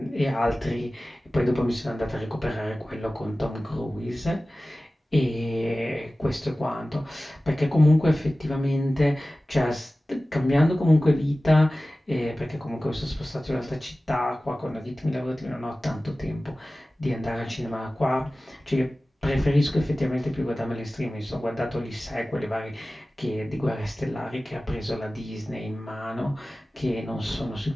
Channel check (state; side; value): normal; both; correlation 0.96